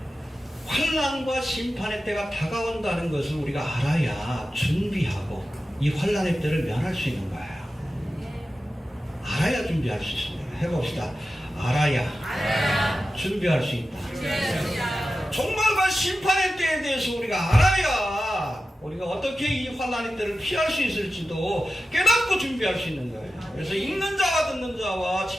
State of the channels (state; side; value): normal; both; correlation 0.93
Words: 환난과 심판의 때가 다가온다는 것을 우리가 알아야 준비하고 이 환난의 때를 면할 수 있는 거예요. 알아야 준비할 수 있습니다. 해봅시다. 알아야 준비할 수 있다. 종말과 심판의 때에 대해서 우리가 알아야 우리가 어떻게 이 환난의 때를 피할 수 있을지도 깨닫고 준비할 수 있는 거예요. 그래서 읽는 자와 듣는 자와